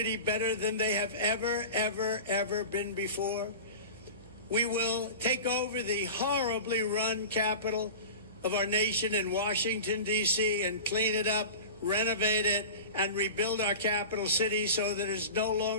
better than they have ever been before. We will take over the horribly run capital of our nation in Washington, D.C., and clean it up, renovate it, and rebuild our capital city so that it's no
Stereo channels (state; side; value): inverted; both; correlation -0.33